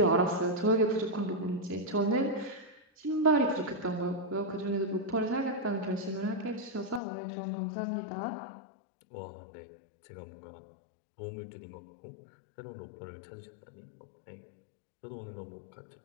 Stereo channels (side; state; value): right; drops out; at 7.0 s